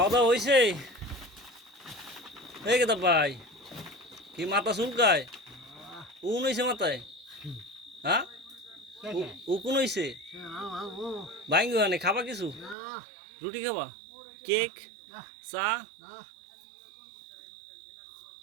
দাওয়া হয়েছে? এই কেতা ভাই, কি মাথা চুলকায়? উন হয়েছে মাথায়? হ্যাঁ উকুন হয়েছে? ভাঙ্গি মানে খাবা কিছু? রুটি খাবা, কেক, চা?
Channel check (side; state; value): left; drops out; at 12.8 s